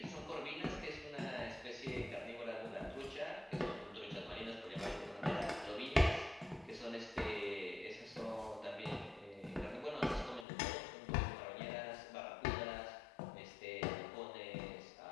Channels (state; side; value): drops out; right; at 10.5 s